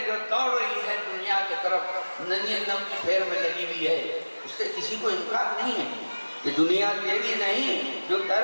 جو دوڑ رہی ہے دنیا کی طرف، ننھی نم کی پھیر میں لگی ہوئی ہے، اس سے کسی کو انکار نہیں ہے، یہ دنیا تیری نہیں، جو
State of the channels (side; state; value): both; inverted; correlation -1.00